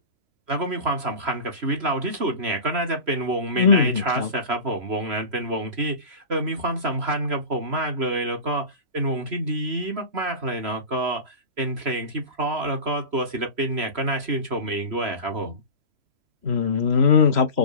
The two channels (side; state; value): left; late; 3.0 ms